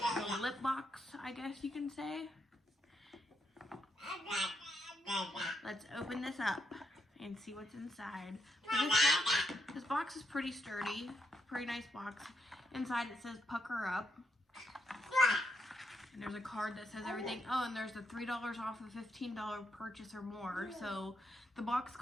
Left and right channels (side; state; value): both; normal; correlation 0.79